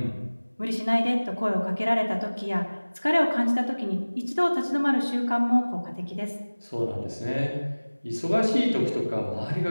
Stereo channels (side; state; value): both; inverted; correlation -1.00